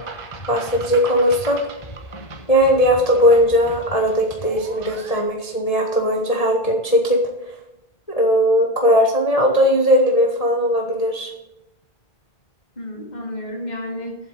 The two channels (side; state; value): right; late; 1.7 ms